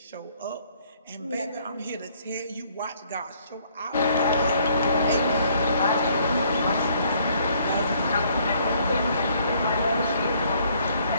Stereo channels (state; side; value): inverted; both; correlation -0.64